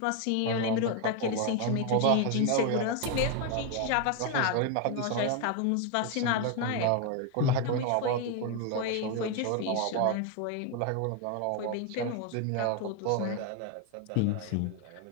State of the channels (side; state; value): both; different; correlation 0.01